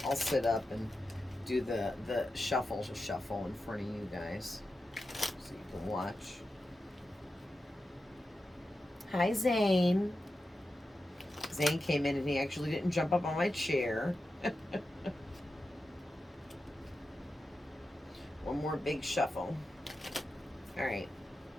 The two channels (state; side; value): normal; both; correlation 0.91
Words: up and do the shuffle in front of you guys so you can watch. Hi, Zane. Zane came in and he actually didn't jump up on my chair. One more big shuffle. All right.